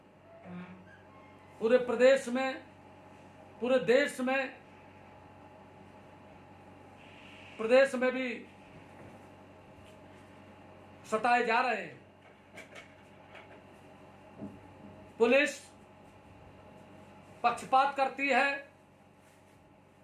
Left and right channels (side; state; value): both; identical; correlation 1.00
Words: पूरे प्रदेश में, पूरे देश में, प्रदेश में भी सताए जा रहे हैं। पुलिस पक्षपात करती है,